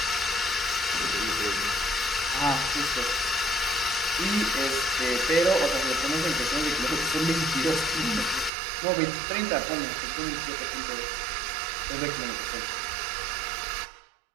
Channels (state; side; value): drops out; left; at 8.5 s